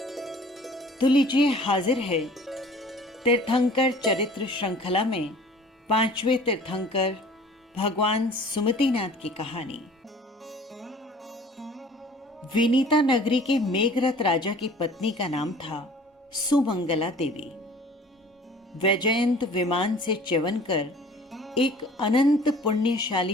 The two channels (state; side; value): normal; both; correlation 0.48